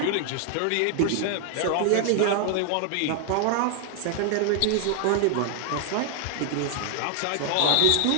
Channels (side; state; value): both; different; correlation 0.00